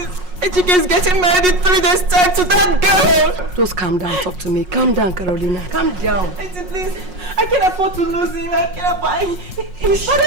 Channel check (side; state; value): left; late; 5.5 ms